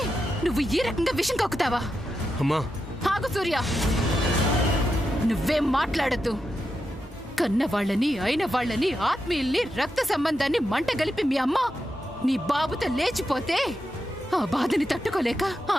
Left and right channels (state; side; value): normal; both; correlation 0.87